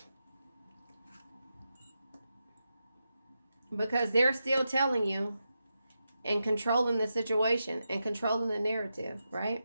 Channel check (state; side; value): inverted; both; correlation -0.88